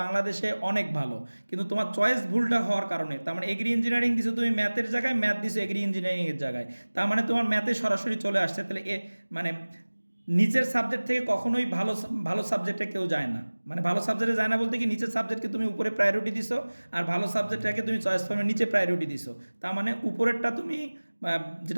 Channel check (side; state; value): both; inverted; correlation -1.00